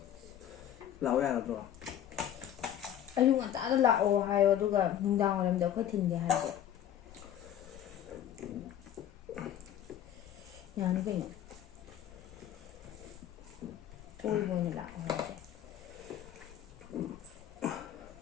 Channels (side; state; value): right; quieter; 10.6 dB